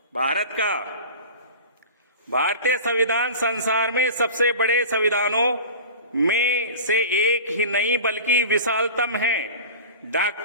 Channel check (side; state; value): both; inverted; correlation -0.36